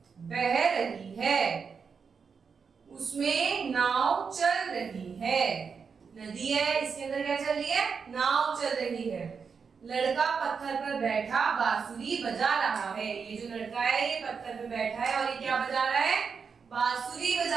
बह रही है, उसमें नाव चल रही है। नदी है, इसके अंदर क्या चल रही है? नाव चल रही है। लड़का पत्थर पर बैठा बांसुरी बजा रहा है। ये जो लड़का है ये पत्थर पर बैठा है और ये क्या बजा रहा है? बांसुरी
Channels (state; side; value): quieter; left; 5.8 dB